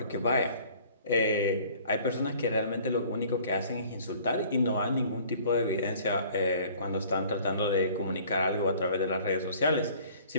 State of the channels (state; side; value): inverted; both; correlation -0.52